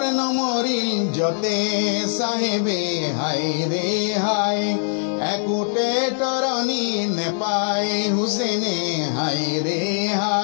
নমরিল যতে সাহেবে হায় রে হায় একুটে তরণী নেপায় হুসেনে হায় রে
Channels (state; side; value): silent; right; digital silence